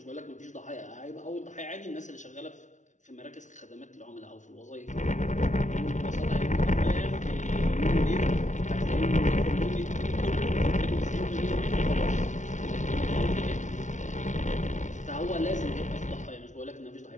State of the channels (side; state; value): right; late; 0.36 ms